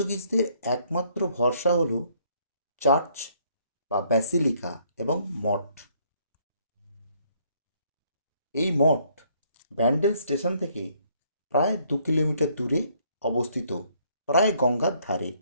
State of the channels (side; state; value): both; inverted; correlation -0.66